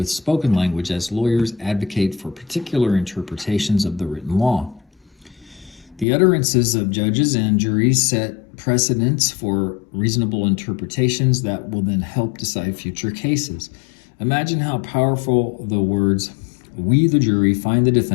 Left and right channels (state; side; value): drops out; right; at 6.1 s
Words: spoken language as lawyers advocate for particular interpretations of the written law. The utterances of judges and juries set precedents for reasonable interpretations that will then help decide future cases. Imagine how powerful the words, we the jury find the